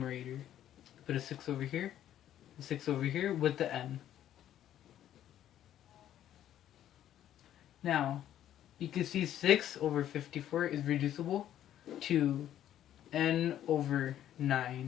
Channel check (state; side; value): quieter; right; 11.5 dB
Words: Put a 6 over here, a 6 over here with the n. Now, you can see 6 over 54 is reducible to n over